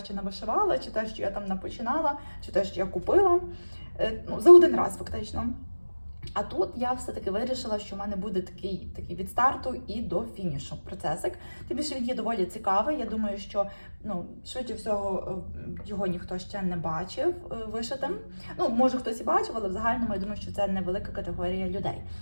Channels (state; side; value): inverted; both; correlation -1.00